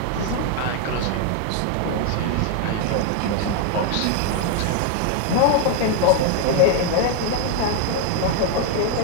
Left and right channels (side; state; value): both; different; correlation 0.01